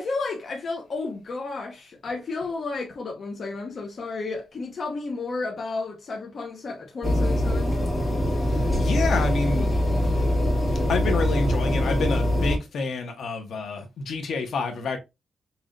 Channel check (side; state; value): both; normal; correlation 0.89